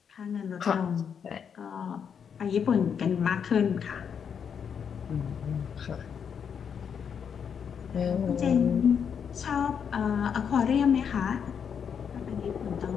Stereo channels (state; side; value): quieter; right; 7.3 dB